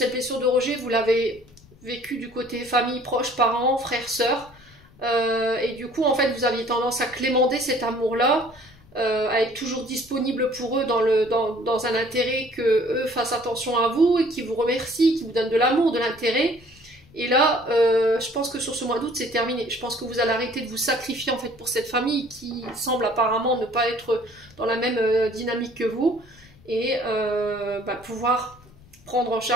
blessure de rejet, vous l'avez vécue du côté famille, proches, parents, frères, sœurs. Et du coup, en fait, vous aviez tendance à clémenter cet amour-là, à être toujours disponible pour eux dans un intérêt que eux fassent attention à vous et qui vous remercient, qui vous donnent de l'amour, de l'intérêt. Et là, je pense que sur ce mois d'août, c'est terminé. Je pense que vous allez arrêter de vous sacrifier en fait pour cette famille qui semble apparemment ne pas être dans la même dynamique que vous et pouvoir prendre en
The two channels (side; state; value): left; noise; rumble, 26 dB below the sound